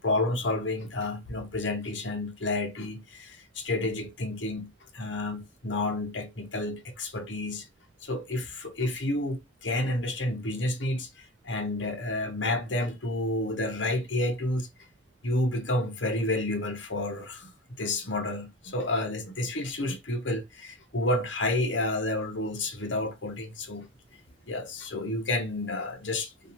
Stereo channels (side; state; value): both; normal; correlation 0.22